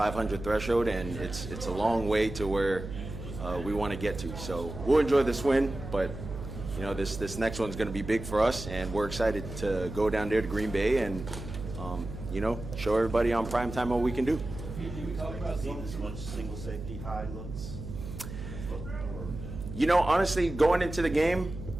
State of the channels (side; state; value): right; noise; hum, 9 dB below the sound